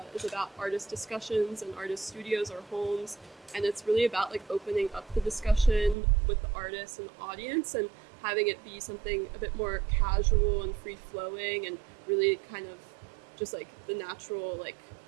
is about artist discussions and artist studios or homes, and it's really about like opening up the discussion with the artist and the audience and having it be something a bit more casual and free-flowing and really kind of just like the natural like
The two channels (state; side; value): drops out; left; at 6.0 s